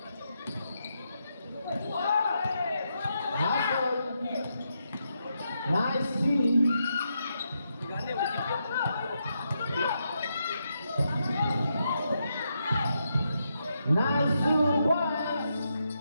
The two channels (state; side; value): inverted; both; correlation -0.82